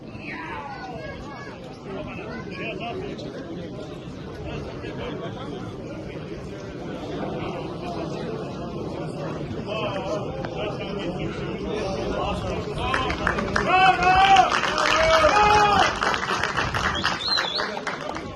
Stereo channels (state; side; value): identical; both; correlation 1.00